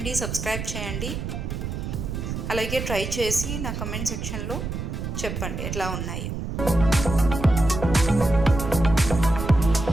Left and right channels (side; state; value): right; noise; rumble, 5 dB below the sound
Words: సబ్స్క్రైబ్ చేయండి. అలాగే ట్రై చేసి నా కమెంట్ సెక్షన్లో చెప్పండి ఎట్లా ఉన్నాయి.